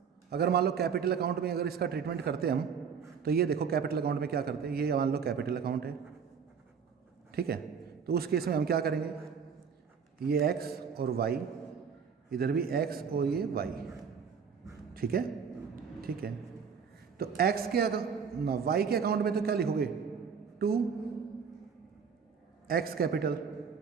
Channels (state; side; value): quieter; left; 6.5 dB